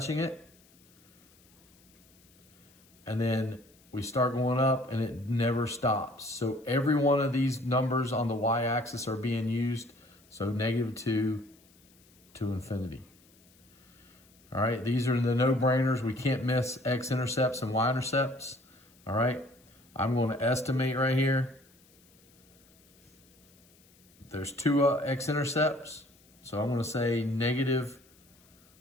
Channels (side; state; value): left; noise; hiss, 29 dB below the sound